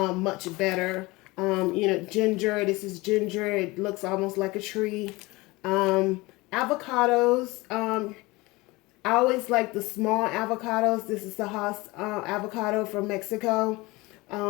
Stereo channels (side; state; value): right; quieter; 22.4 dB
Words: better. You know, ginger. This is ginger. It looks almost like a tree. Avocados. I always like the small avocados. This is the Haas avocado from Mexico.